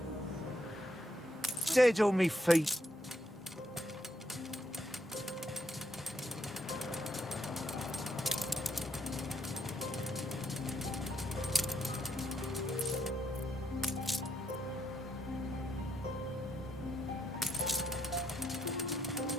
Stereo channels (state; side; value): normal; both; correlation 0.77